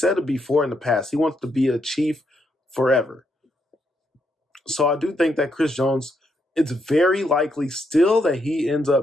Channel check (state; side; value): normal; both; correlation 0.78